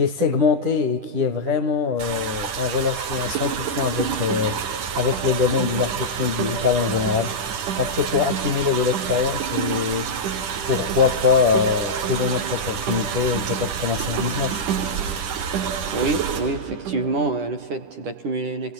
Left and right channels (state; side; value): late; left; 10 ms